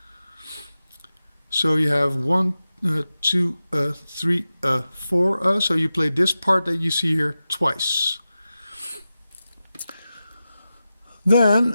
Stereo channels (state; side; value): inverted; both; correlation -0.93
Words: So you have 1, 2, 3, 4. So you play this part that you see here twice.